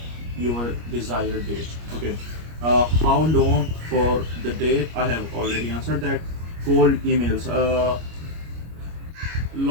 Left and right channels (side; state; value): left; late; 25 ms